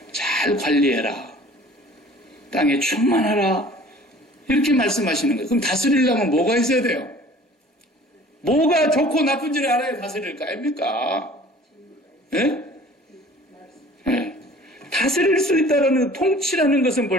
잘 관리해라. 땅에 충만하라. 이렇게 말씀하시는 거예요. 그럼 다스리려면 뭐가 있어야 돼요? 뭐가 좋고 나쁜지를 알아야 다스릴 거 아닙니까? 예? 예. 다스릴 수 있다는 통치라는 것은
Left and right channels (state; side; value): normal; both; correlation 0.48